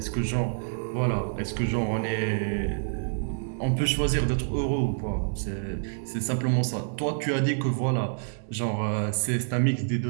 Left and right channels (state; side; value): silent; left; digital silence